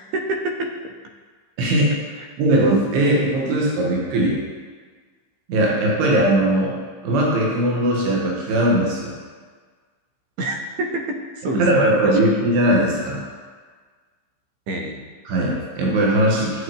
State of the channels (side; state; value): left; late; 15 ms